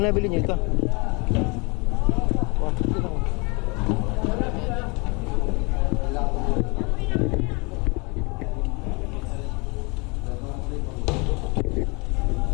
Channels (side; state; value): right; quieter; 29.6 dB